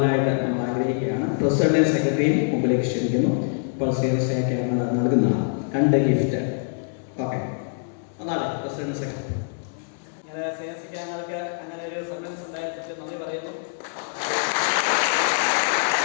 നമ്മൾ ആഗ്രഹിക്കുകയാണ്. പ്രസിഡന്റും സെക്രട്ടറിയും മുമ്പിലേക്ക് ക്ഷണിക്കുന്നു. ഇപ്പോൾ ശ്രീയൻ സഖ്യ നൽകുന്നതാണ് 2 ഗിഫ്റ്റ്. ഓക്കെ, അതാണ് പ്രസിഡന്റ് സെക്രട്ടറി. ഇങ്ങനെ ശ്രീയൻ സഖ്യങ്ങൾക്ക് അങ്ങനെ ഒരു സർവീസ് ഉണ്ടായിട്ട് നന്ദി പറയുന്നു.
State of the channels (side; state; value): right; silent; 62 dB below the other